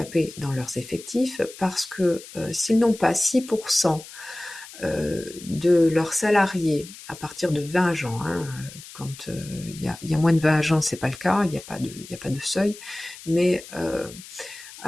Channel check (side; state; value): left; noise; hiss, 16 dB below the sound